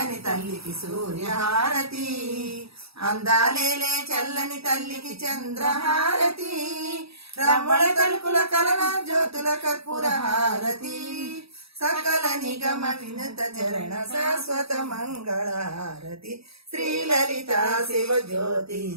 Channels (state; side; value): late; left; 0.77 ms